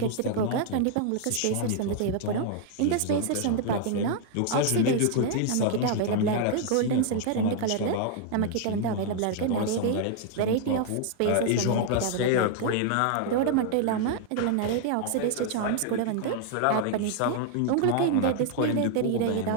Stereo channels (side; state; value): both; different; correlation 0.00